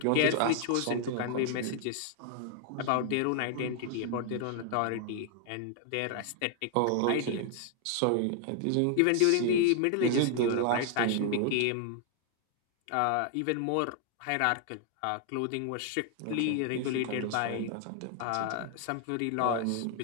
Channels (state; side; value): different; both; correlation 0.00